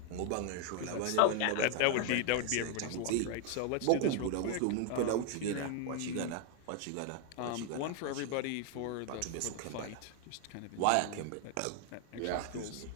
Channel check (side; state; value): both; different; correlation 0.00